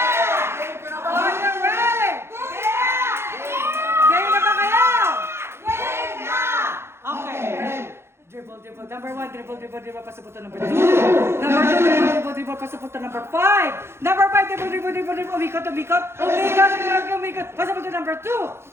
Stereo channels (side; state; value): left; late; 0.12 ms